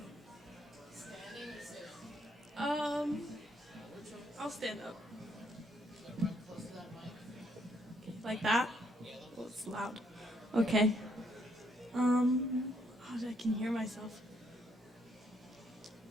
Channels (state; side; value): normal; both; correlation 0.72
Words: I'll stand up. Like Okay. I can hear myself.